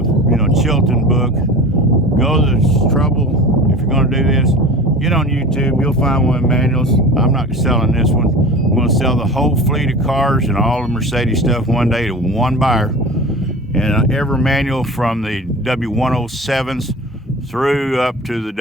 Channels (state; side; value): normal; both; correlation 0.35